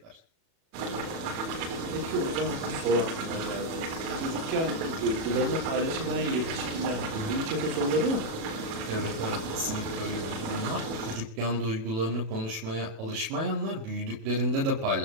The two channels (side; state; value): left; late; 36 ms